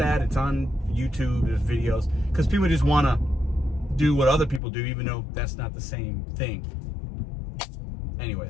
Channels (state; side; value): drops out; right; at 4.6 s